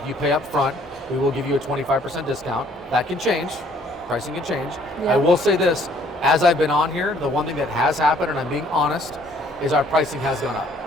you pay up front, we will give you a 25% discount. That can change. Pricing can change. Yeah. I will say this, as I've been on here, the one thing that has happened, and I'm being honest, is our pricing has gone up.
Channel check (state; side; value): normal; both; correlation 0.61